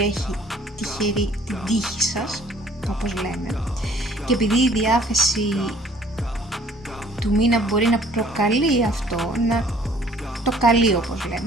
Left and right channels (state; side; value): normal; both; correlation 0.56